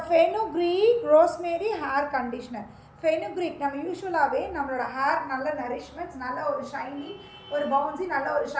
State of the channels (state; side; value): identical; both; correlation 1.00